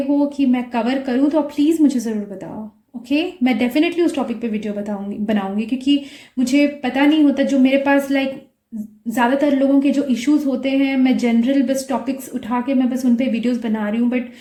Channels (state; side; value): identical; both; correlation 1.00